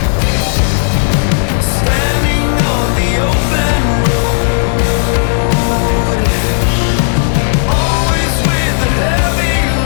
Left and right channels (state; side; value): silent; right; digital silence